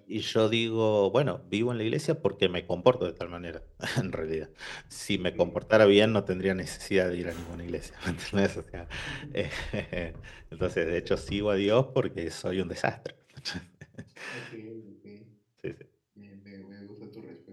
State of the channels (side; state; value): both; identical; correlation 1.00